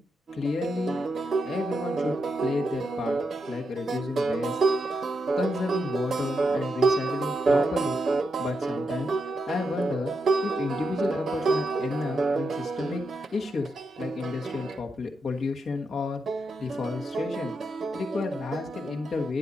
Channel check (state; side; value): normal; both; correlation 0.84